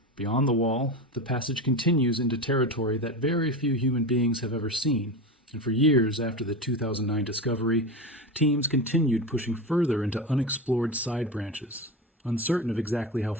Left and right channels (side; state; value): both; normal; correlation 0.22